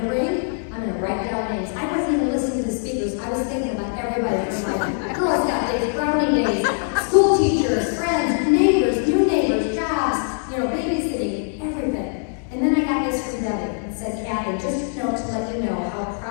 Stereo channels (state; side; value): silent; right; 57 dB below the other